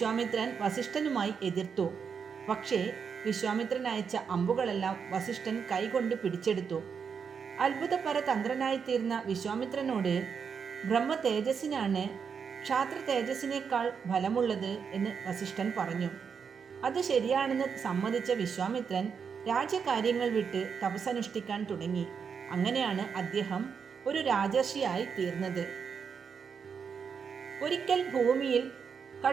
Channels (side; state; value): left; quieter; 6.4 dB